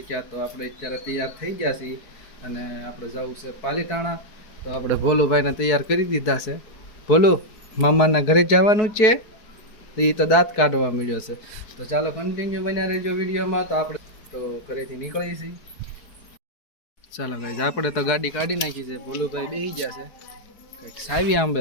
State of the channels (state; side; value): late; right; 4.7 ms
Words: તો આપણે અત્યારે તૈયાર થઈ ગયા છીએ અને આપણે જવું છે પાલીતાણા. તો આપણે ભોલુભાઈને તૈયાર કરી દીધા છે. ભોલુ, મામાના ઘરે જવાનું છે. તો એ તો દાંત કાઢવા મળ્યો છે. તો ચાલો કન્ટિન્યુ બન્યા રહેજો વિડીયોમાં. તો આપણે તો ઘરેથી નીકળીએ છીએ. ચાલો ગાઈસ, આપણે તો ગાડી કાઢી નાખી છે. ભોલુભાઈ બેસી ગયા છે, કંઈક સાવી આંબે